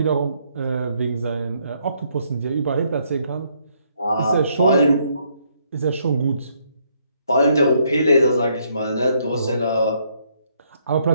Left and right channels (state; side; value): inverted; both; correlation -0.71